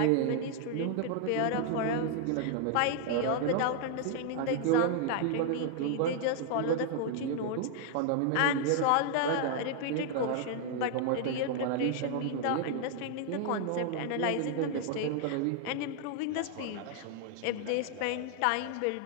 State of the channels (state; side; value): different; both; correlation 0.00